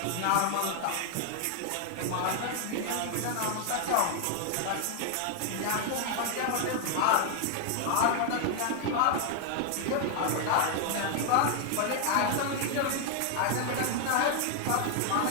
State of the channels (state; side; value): different; both; correlation 0.00